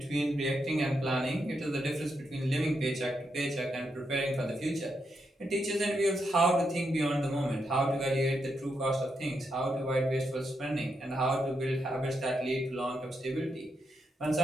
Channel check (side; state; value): both; normal; correlation 0.82